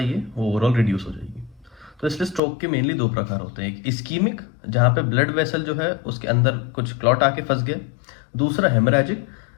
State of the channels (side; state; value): right; drops out; at 2.4 s